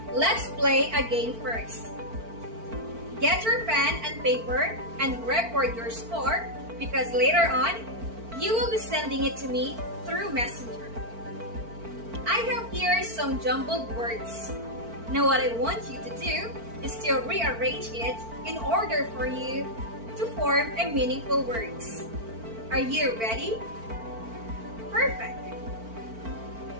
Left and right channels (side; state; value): left; late; 4.4 ms